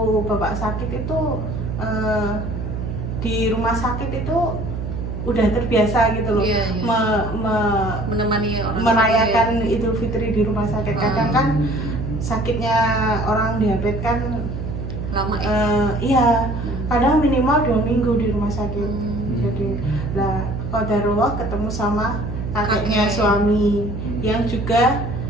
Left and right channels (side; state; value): right; noise; hum, 5 dB below the sound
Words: bapak sakit itu di rumah sakit itu udah terbiasa gitu loh. Iya. Menemani orang merayakan Idul Fitri di rumah sakit. Kadang kan sakitnya orang diabetes kan lama ya? Iya, kadang minimal 2 minggu di rumah sakit. Jadi lah qadarullah ketemu sama kakeknya suami yang juga